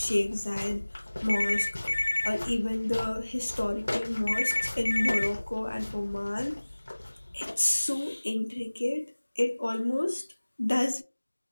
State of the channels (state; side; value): inverted; both; correlation -1.00